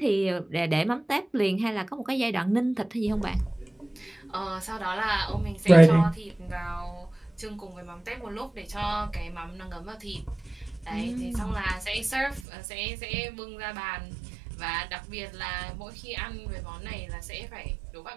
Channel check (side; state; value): left; drops out; at 12.4 s